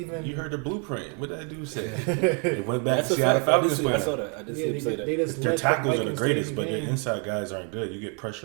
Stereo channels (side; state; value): left; quieter; 37.8 dB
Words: You heard the blueprint. What did that dude say? They went back to Seattle Falcons. I saw that. I did see him say that. Their tackles are the greatest, but their inside guys aren't good. You get